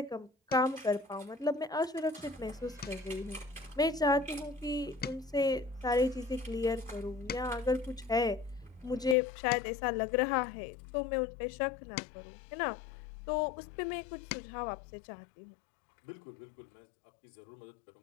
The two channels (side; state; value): right; drops out; at 9.2 s